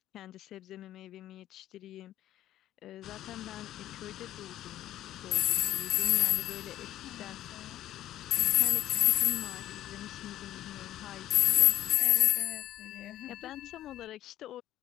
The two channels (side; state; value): right; quieter; 13.0 dB